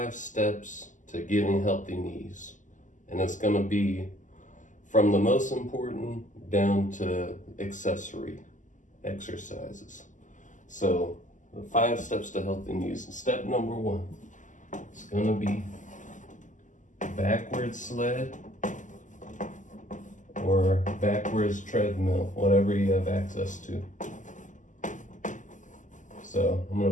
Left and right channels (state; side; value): late; right; 0.37 ms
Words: steps to getting healthy knees. And it's going to be from the most important down to accessory exercises. So the 5 steps to healthy knees. Step number 1 is going to be backwards sled or backwards treadmill, whatever you have access to. So I'm going